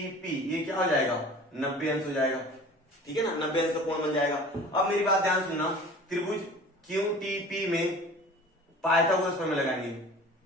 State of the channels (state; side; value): normal; both; correlation 0.43